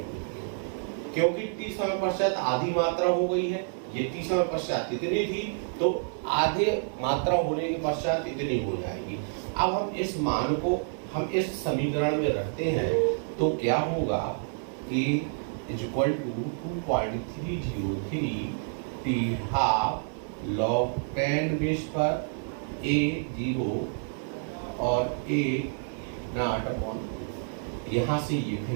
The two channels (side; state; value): left; silent; 58 dB below the other